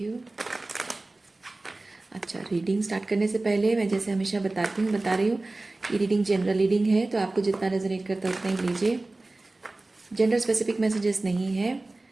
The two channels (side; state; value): left; quieter; 3.0 dB